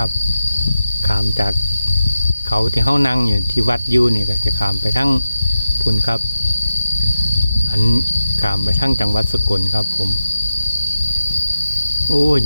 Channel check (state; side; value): inverted; both; correlation -0.92